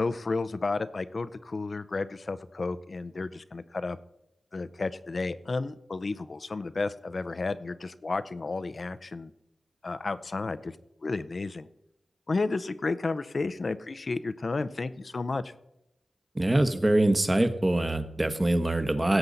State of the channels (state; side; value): normal; both; correlation 0.96